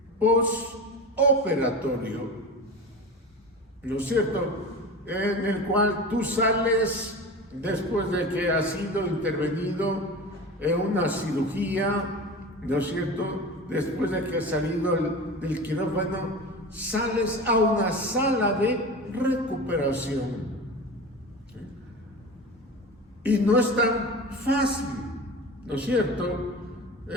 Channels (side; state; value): both; normal; correlation 0.31